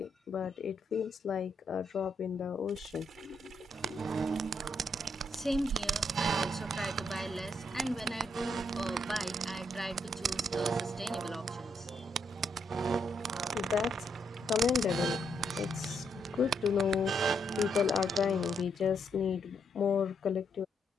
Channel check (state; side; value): normal; both; correlation 0.76